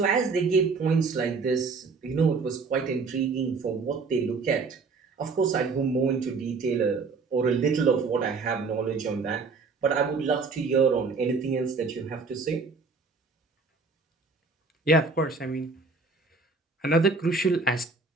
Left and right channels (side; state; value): left; quieter; 4.4 dB